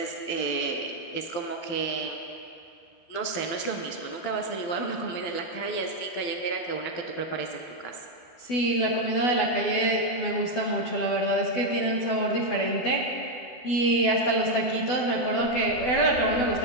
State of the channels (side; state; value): right; late; 12 ms